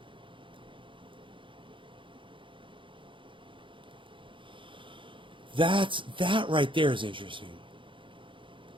That right there is interesting.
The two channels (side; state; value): left; late; 0.24 ms